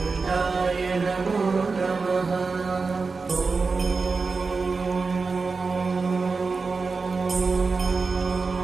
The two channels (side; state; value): left; quieter; 4.4 dB